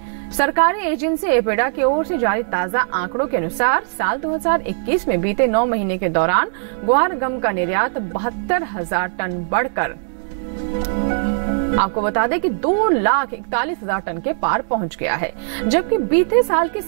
सरकारी एजेंसी एपेडा की ओर से जारी ताजा आंकड़ों के अनुसार साल 2021 में बीते 9 महीने के दौरान ग्वारगम का निर्यात 72,000 टन बढ़कर आपको बता दें कि 2,41,000 टन के पार पहुंच गया है, जबकि बीते साल की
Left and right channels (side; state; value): left; silent; digital silence